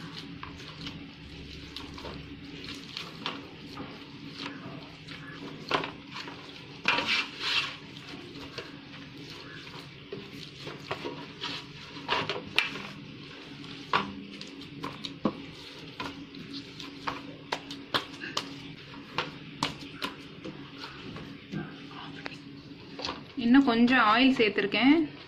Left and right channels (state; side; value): identical; both; correlation 1.00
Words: இன்னும் கொஞ்சம் ஆயில் சேர்த்துருக்கேன்.